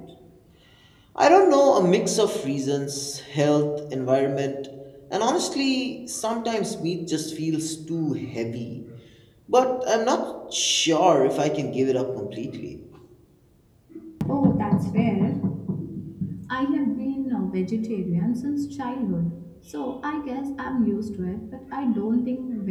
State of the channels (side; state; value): both; identical; correlation 1.00